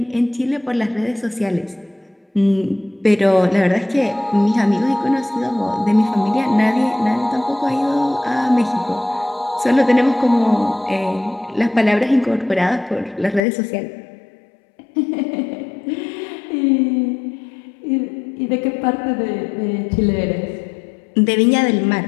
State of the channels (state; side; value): drops out; right; at 13.4 s